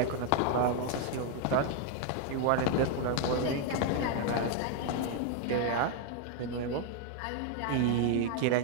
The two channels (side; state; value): both; different; correlation 0.00